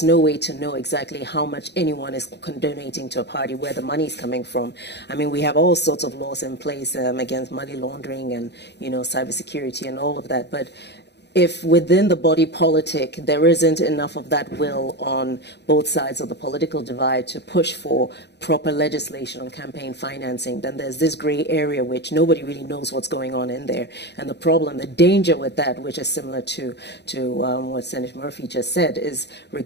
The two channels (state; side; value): late; right; 0.50 ms